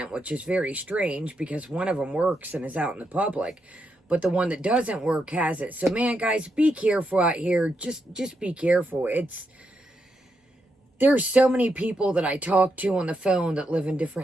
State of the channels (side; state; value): both; normal; correlation 0.82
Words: which is very strange because one of them works and is out in the public. But the one that doesn't work has it. So, man, guys, be careful out here. Just be careful. There's so many people that I talk to on the phone that live in